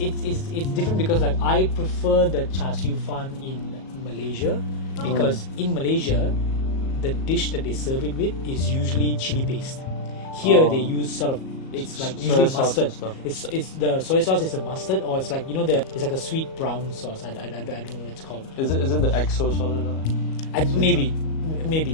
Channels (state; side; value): late; right; 37 ms